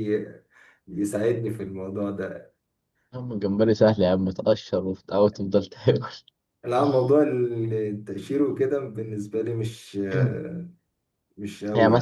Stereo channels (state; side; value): identical; both; correlation 1.00